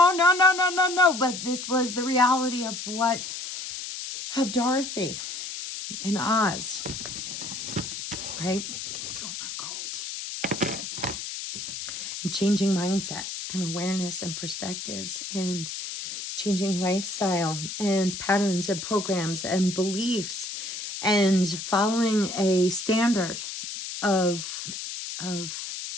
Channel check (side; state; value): left; noise; hiss, 7 dB below the sound